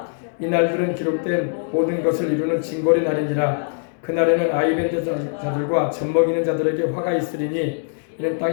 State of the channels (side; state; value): right; silent; digital silence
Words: 이 날들은 기록된 모든 것을 이루는 징벌의 날이니라. 그날에는 아이벤 자들과 젖먹이는 자들에게 화가 있으리니 이는